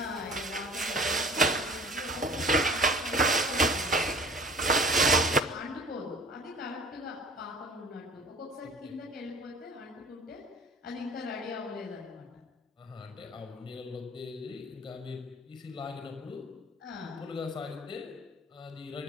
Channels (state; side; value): normal; both; correlation 0.47